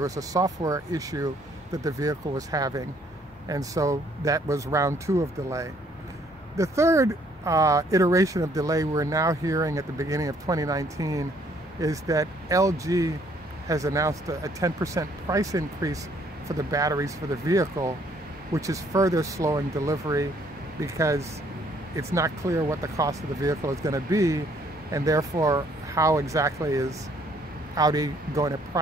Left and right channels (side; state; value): both; normal; correlation 0.65